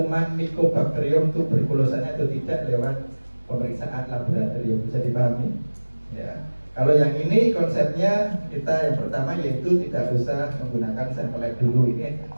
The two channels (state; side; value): inverted; both; correlation -1.00